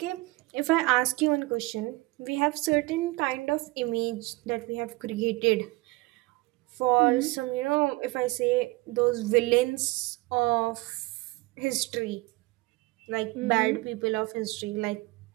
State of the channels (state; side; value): quieter; left; 22.5 dB